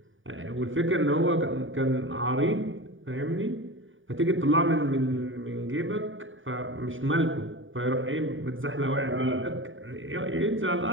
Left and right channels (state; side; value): late; left; 0.57 ms